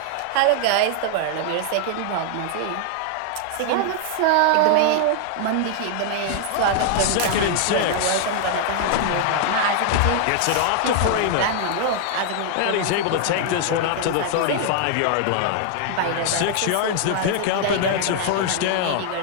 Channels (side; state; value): both; different; correlation 0.00